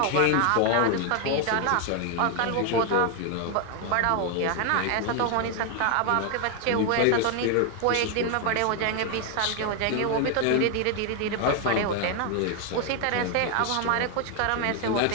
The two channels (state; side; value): different; both; correlation 0.01